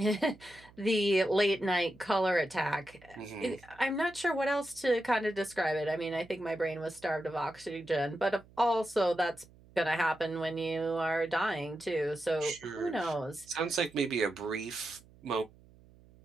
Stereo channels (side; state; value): right; noise; hum, 25 dB below the sound